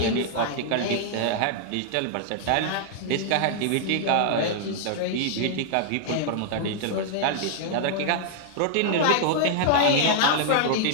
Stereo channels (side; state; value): both; different; correlation -0.01